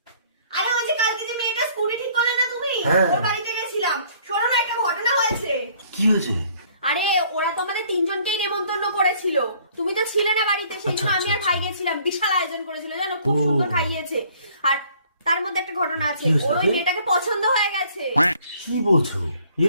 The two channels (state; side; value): inverted; both; correlation -0.59